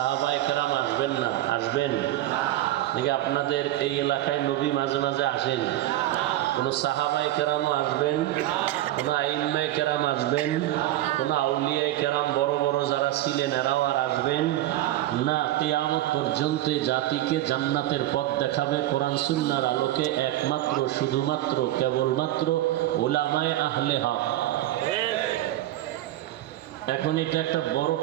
কেরাম আসবেন না। আসবেন? নাকি আপনাদের এই এলাকায় নবী মাঝে মাঝে আসেন? কোনো সাহাবায়ে কেরামও আসবেন, কোনো আইম্মায়ে কেরাম আসবেন, কোনো আউলিয়ায়ে কেরাম বড় বড় যারা ছিলেন এরাও আর আসবেন না। কিয়ামত পর্যন্ত জাতিকে জান্নাতের পথ দেখাবে কোরআন সুন্নাহর আলোকে একমাত্র শুধুমাত্র কেবলমাত্র উলামায়ে আহলে হক। এখন এটা একটা বড়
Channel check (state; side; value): quieter; left; 14.6 dB